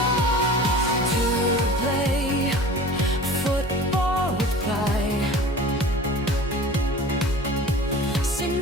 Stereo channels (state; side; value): normal; both; correlation 0.41